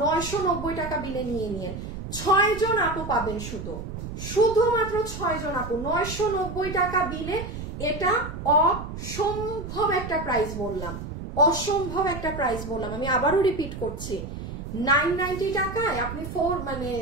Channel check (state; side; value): noise; right; rumble, 8 dB below the sound